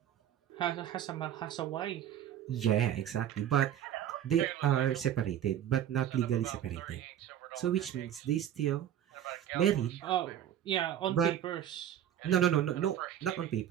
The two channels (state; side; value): quieter; left; 10.6 dB